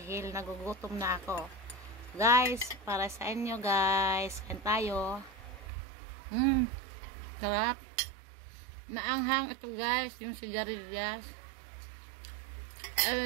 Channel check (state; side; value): drops out; left; at 5.7 s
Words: nagugutom na ako. Guys, para sa inyo guys, kain tayo. Sarap. Maanghang ito guys, yung sigarilyas.